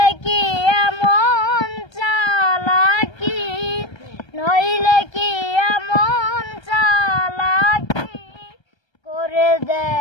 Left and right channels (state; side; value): late; right; 1.3 ms